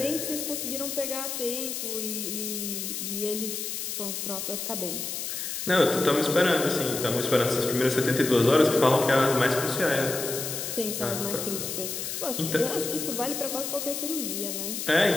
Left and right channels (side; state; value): left; noise; hiss, 4 dB below the sound